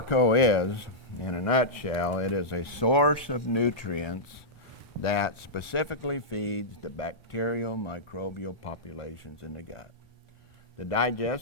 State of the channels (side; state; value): both; normal; correlation -0.11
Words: is, in a nutshell, it is a source of nutrients that specifically feeds the bacterial microbial populations in the gut. The